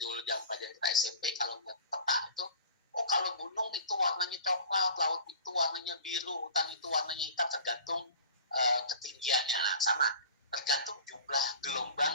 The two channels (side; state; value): both; inverted; correlation -0.41